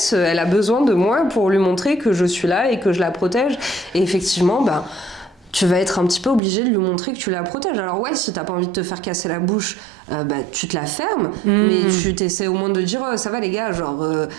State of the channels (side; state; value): left; drops out; at 6.4 s